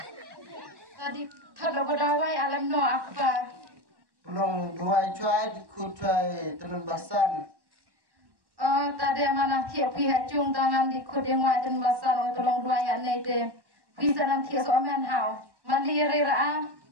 Tadi thado badawai alam no apa. Long dua cuai ku cuai temen basan. Tadi mana tiap pihak cung tangan di kudeng wajan basan tolong dua ya nei te. Bisa nanti soaman hau. Mandiri ra.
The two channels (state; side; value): late; left; 1.1 ms